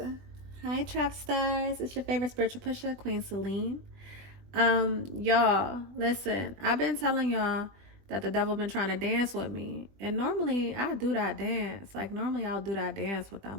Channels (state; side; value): late; left; 20 ms